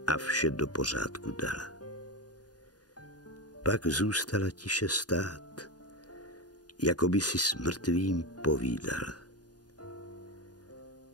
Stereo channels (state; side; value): late; right; 0.69 ms